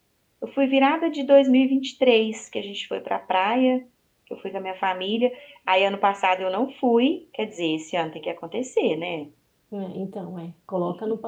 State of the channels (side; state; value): both; identical; correlation 1.00